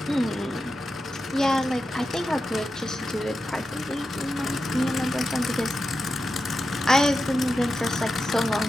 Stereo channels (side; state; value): both; normal; correlation 0.90